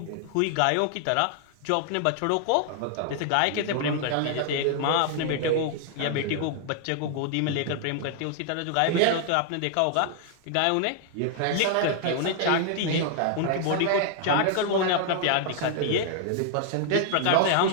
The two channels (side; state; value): both; different; correlation 0.00